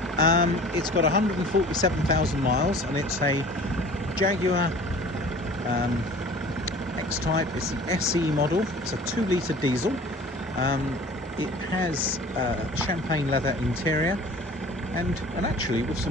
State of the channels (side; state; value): both; normal; correlation 0.45